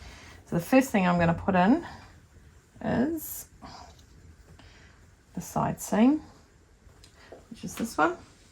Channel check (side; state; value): both; identical; correlation 1.00